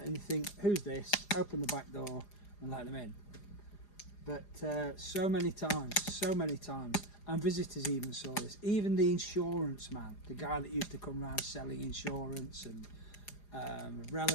and you think, "Who's this?" Open the back door and let them in. But so many times, and visitors even saw this. Even the insurance man, the guy that used to come around selling insurance, and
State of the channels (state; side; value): late; right; 4.9 ms